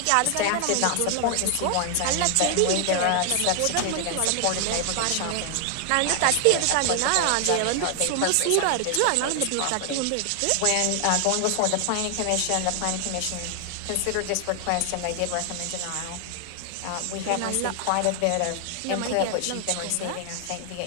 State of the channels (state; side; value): different; both; correlation 0.00